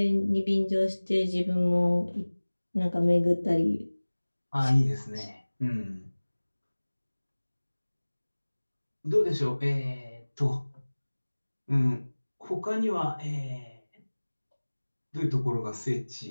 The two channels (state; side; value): inverted; both; correlation -1.00